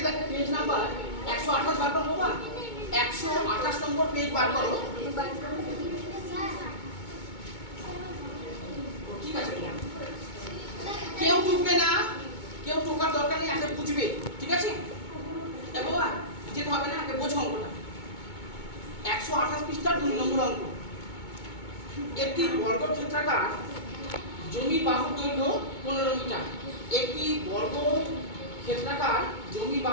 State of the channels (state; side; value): late; right; 2.2 ms